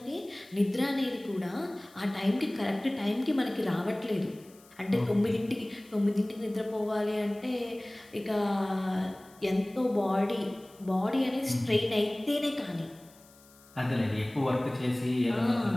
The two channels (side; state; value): left; noise; hiss, 26 dB below the sound